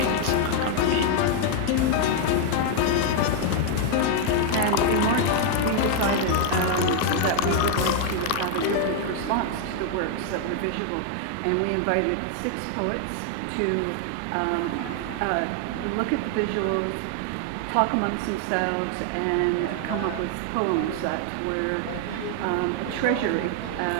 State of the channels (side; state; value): both; different; correlation 0.00